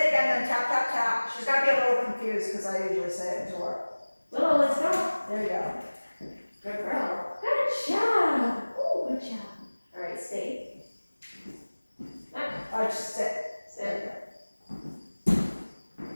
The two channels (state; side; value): inverted; both; correlation -1.00